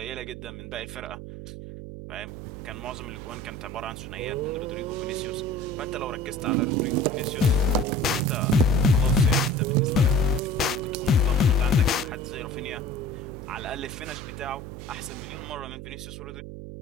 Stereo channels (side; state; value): right; noise; hum, 10 dB below the sound